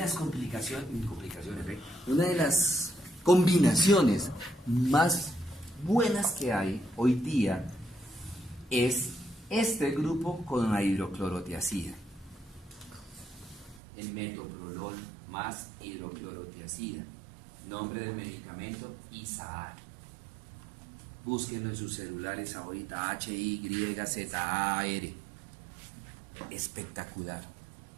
una de las combinaciones más buenas que hay hoy día es este grupo con la hidroclorotiazida. El metoprolol más hidroclorotiazida. Nombre del medicamento, Isaar. Búsquenlo en sus celulares ahorita, HYZAR. Espectacular.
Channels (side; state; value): left; drops out; at 13.8 s